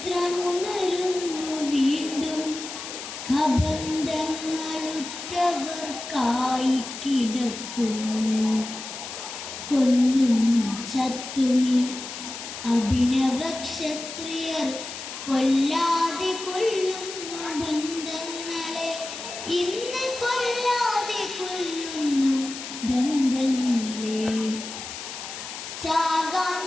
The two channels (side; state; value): left; noise; hiss, 9 dB below the sound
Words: വീണ്ടും, കബന്ധങ്ങളുറ്റവർക്കായി കിടക്കുന്നു. കൊന്നും ചത്തുമി അഭിനവ ക്ഷത്രിയർ, കൊല്ലാതെ കൊല്ലുന്നു ബന്ധങ്ങളെ, ഇന്ന് കൊല്ലാതെ കൊല്ലുന്നു ബന്ധങ്ങളെ. ചാകാൻ